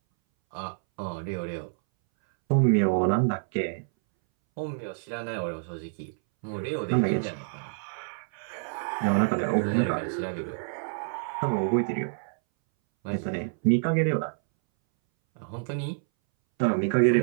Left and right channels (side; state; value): left; silent; 60 dB below the other